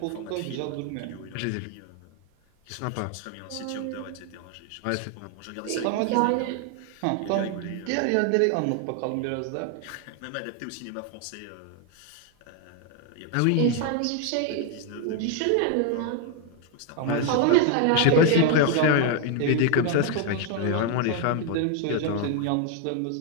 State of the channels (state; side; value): different; both; correlation 0.01